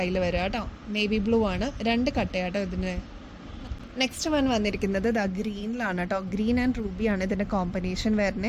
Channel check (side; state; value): both; identical; correlation 1.00